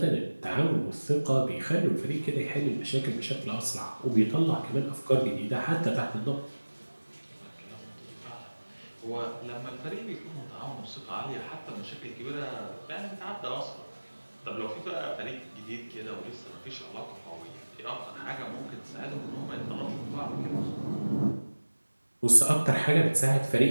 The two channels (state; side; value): inverted; both; correlation -1.00